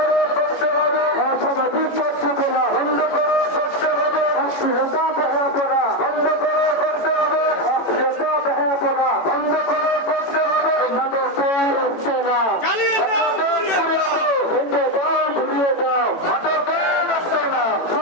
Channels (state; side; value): late; right; 18 ms